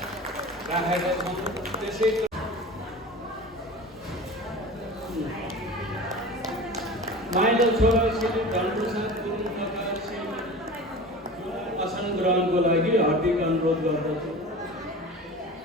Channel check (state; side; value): normal; both; correlation 0.35